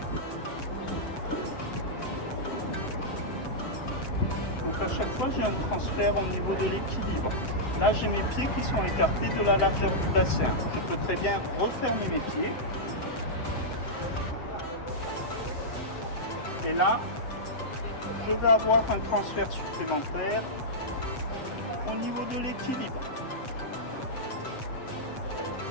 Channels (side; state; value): right; late; 7.8 ms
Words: Donc à chaque fois, j'ai un transfert au niveau de l'équilibre. Là, j'ai mes pieds qui sont écartés de la largeur du bassin. Je peux très bien refermer mes pieds. Et là, je vais avoir un transfert supplémentaire au niveau de l'équilibre.